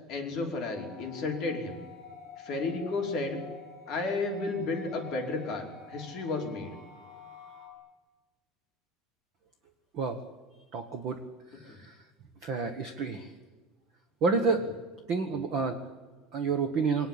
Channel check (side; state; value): both; normal; correlation 0.30